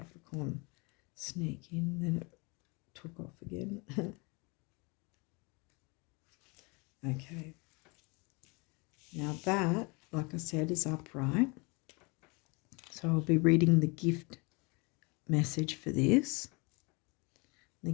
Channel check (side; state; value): right; quieter; 29.0 dB